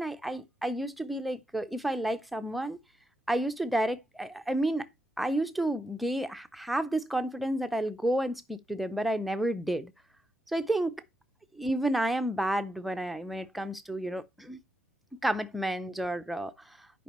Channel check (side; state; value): both; normal; correlation 0.86